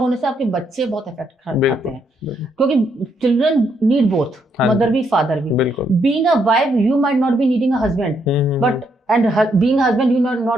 से आपके बच्चे बहुत इफेक्ट खाते हैं, क्योंकि चिल्ड्रन नीड बोथ, मदर भी फादर भी। Being a wife you might not be needing a husband, but and being a husband you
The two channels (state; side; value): normal; both; correlation 0.75